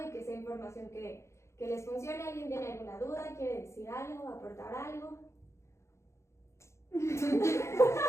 y que sea información que les funcione. ¿Alguien tiene alguna duda? ¿Quiere decir algo? ¿Aportar algo?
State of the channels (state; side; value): late; right; 0.14 ms